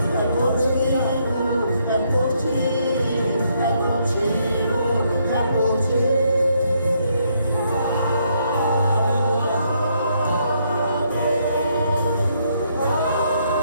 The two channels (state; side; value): inverted; both; correlation -0.73